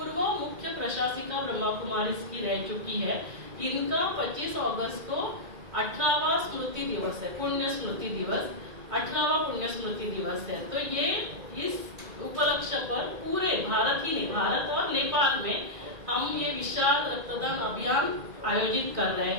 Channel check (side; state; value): left; late; 2.2 ms